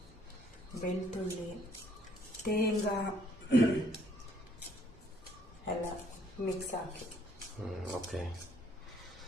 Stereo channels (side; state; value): both; normal; correlation 0.64